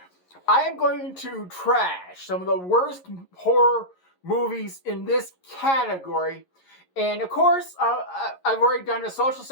am going to trash some of the worst horror movies in this category. And of course, I've already done a social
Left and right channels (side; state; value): right; late; 11 ms